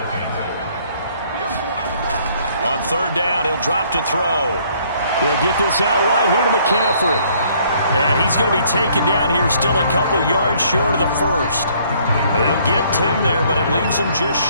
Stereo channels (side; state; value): both; inverted; correlation -0.63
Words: On 3rd down, he'll drop to throw. He'll get this out wide here to McCaffrey. And he's going to be taken down here still a couple yards short of the 1st. They'll get 10 there, but it leaves him just